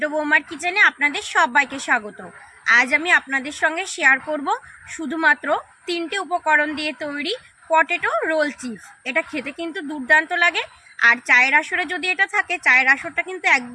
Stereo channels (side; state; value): both; identical; correlation 1.00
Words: বৌমার কিচেনে আপনাদের সবাইকে স্বাগত। আজ আমি আপনাদের সঙ্গে শেয়ার করব শুধুমাত্র 3টে উপকরণ দিয়ে তৈরি পটেটো রোল চিপস। এটা খেতে কিন্তু দুর্দান্ত লাগে, আর চায়ের আসরে যদি এটা থাকে চায়ের আসরটা কিন্তু